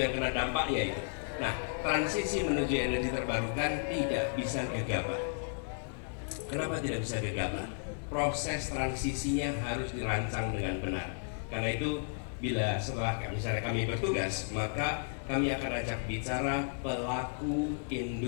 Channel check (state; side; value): silent; right; 55 dB below the other